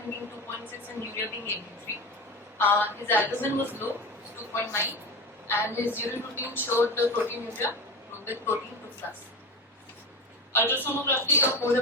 being 2.6 and urea being 83. His albumin was low, 2.9, and his urine routine showed proteinuria with protein 2+. Ultrasonography of whole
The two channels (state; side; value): normal; both; correlation 0.26